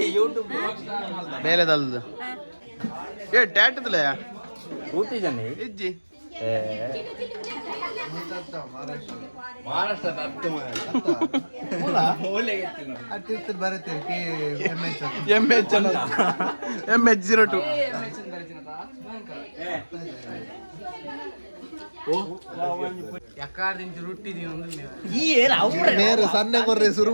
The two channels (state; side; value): inverted; both; correlation -1.00